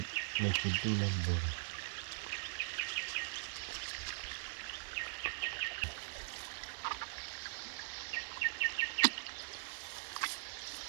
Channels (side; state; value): left; silent; digital silence